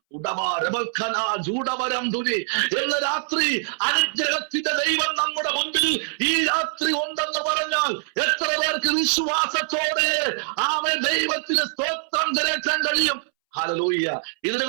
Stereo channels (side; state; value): left; silent; 63 dB below the other